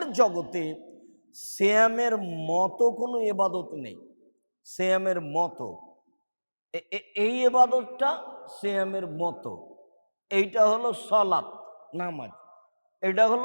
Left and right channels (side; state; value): both; inverted; correlation -1.00